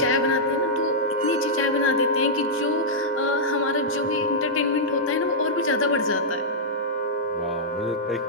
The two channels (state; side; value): normal; both; correlation -0.09